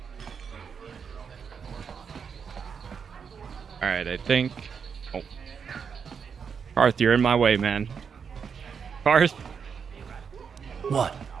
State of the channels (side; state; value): left; quieter; 6.5 dB